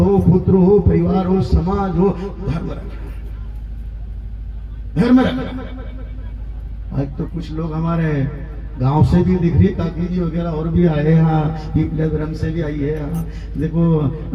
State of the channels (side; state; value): both; identical; correlation 1.00